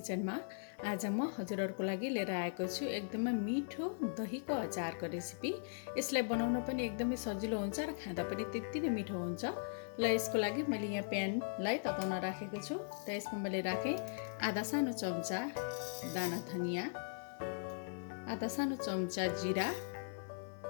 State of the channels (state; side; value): silent; right; digital silence